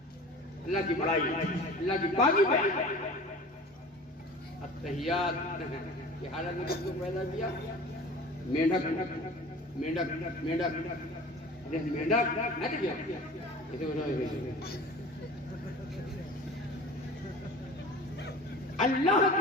अल्लाह की बड़ाई, अल्लाह की पाकी बयान। अत्तहियात की हालत में किसको पैदा किया? मेंढक, मेंढक, मेंढक, मेंढक नहीं किया। अल्लाह की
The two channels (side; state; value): both; normal; correlation 0.40